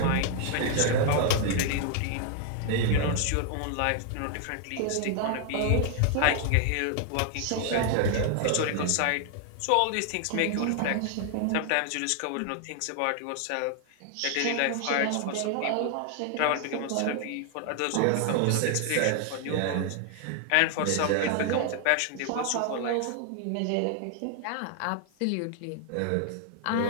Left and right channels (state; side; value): different; both; correlation 0.00